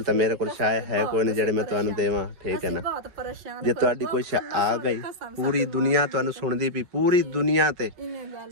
ਤਾਂ ਮੇਰੇ ਕੋਲ ਸ਼ਾਇਦ ਹੈ ਕੋਈ ਨਹੀਂ ਜਿਹੜੇ ਮੈਂ ਤੁਹਾਨੂੰ ਦੇਵਾਂ, ਠੀਕ ਹੈ ਨਾ। ਬਹੁਤ ਪਰੇਸ਼ਾਨ ਜੇ ਤੁਹਾਡੀ ਕੋਈ ਆ ਗਈ ਪੂਰੀ ਦੁਨੀਆ ਤੁਹਾਨੂੰ ਸੁਣਦੀ ਪਈ, ਪੂਰੀ ਦੁਨੀਆ ਤੇ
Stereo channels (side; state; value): left; late; 5.3 ms